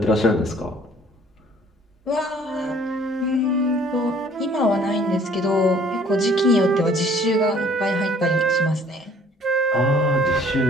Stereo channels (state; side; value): normal; both; correlation 0.57